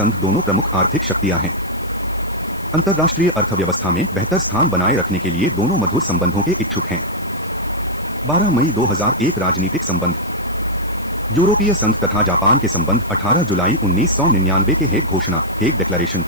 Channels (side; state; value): left; noise; hiss, 21 dB below the sound